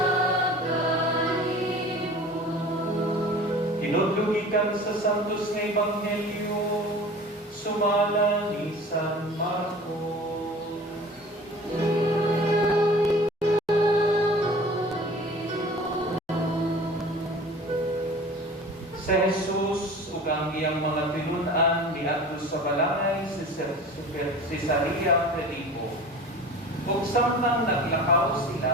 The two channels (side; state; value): both; normal; correlation 0.41